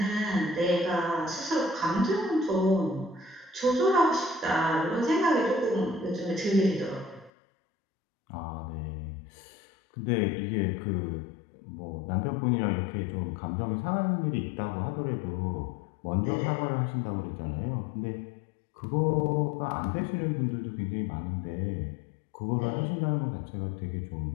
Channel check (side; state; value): right; drops out; at 7.3 s